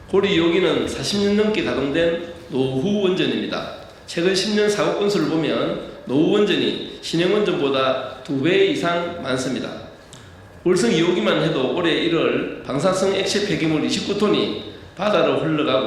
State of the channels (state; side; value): identical; both; correlation 1.00